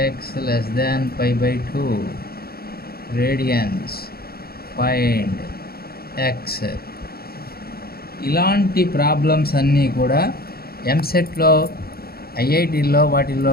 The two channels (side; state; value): right; late; 0.45 ms